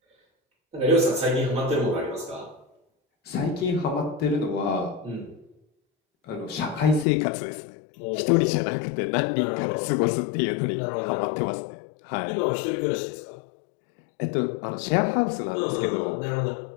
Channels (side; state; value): right; drops out; at 7.1 s